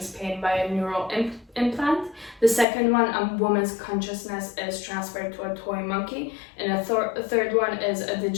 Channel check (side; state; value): right; drops out; at 2.7 s